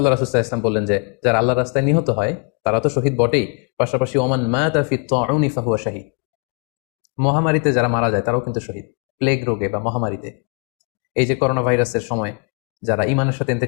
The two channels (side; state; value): right; quieter; 34.0 dB